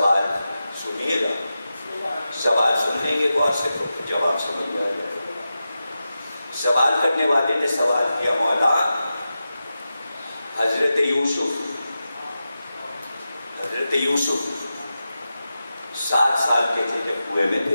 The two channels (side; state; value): both; inverted; correlation -0.92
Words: سنیے گا, سوال سننے کے بعد سے تو جواب سمجھ میں آ جائے. سوال کرنے والے نے سوال کیا, مولا حضرت یوسف 7 سال کے تھے جب کنویں میں